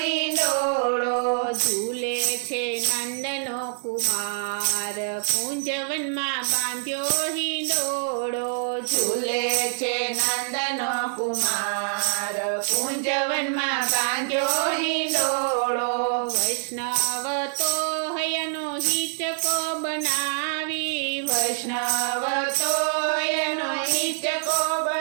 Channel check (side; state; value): left; silent; digital silence